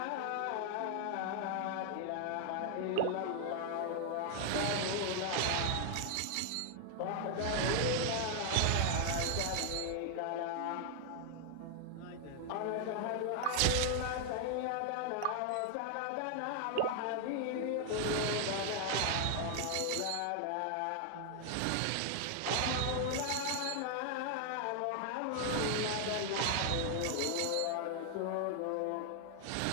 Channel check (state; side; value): different; both; correlation 0.00